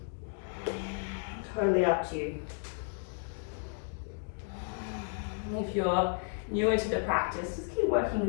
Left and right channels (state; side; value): silent; right; 56 dB below the other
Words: Totally up to you. If you're newer to the practice, just keep working